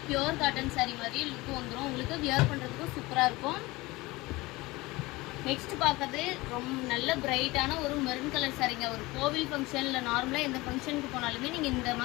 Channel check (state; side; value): quieter; right; 21.3 dB